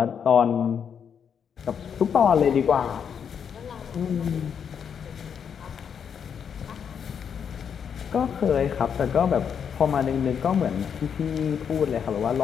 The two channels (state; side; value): quieter; right; 7.5 dB